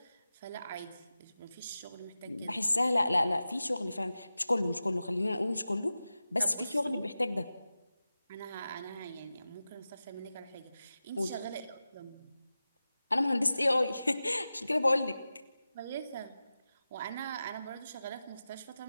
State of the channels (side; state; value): both; inverted; correlation -0.94